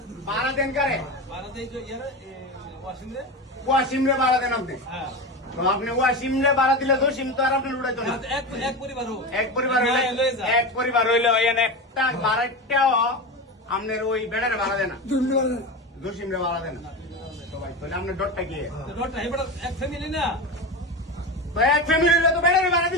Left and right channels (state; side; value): normal; both; correlation 0.22